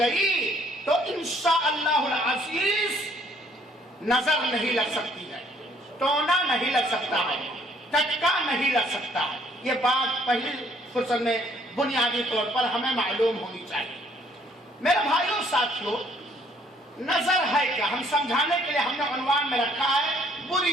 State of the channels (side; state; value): both; normal; correlation 0.63